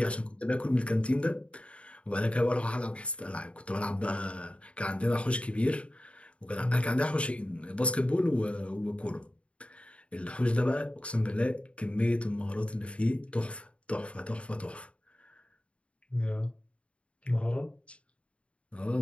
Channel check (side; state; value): right; late; 0.061 ms